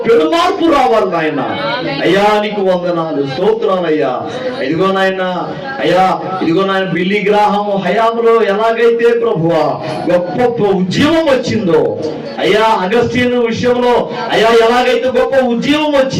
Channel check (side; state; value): both; identical; correlation 1.00